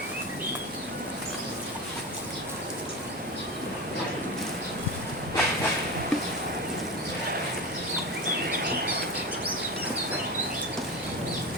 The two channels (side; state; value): both; normal; correlation 0.24